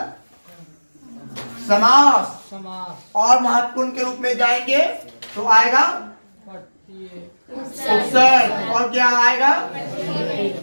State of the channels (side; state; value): both; inverted; correlation -1.00